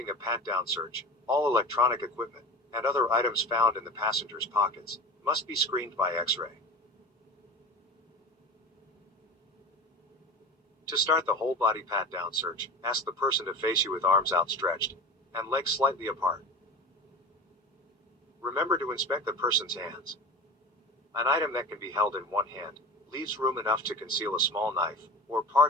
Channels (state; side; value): normal; both; correlation 0.33